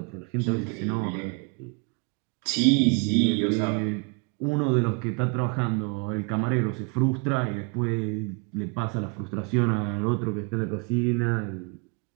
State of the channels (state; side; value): quieter; left; 31.6 dB